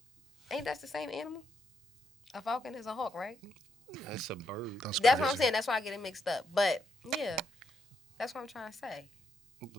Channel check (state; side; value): normal; both; correlation 0.78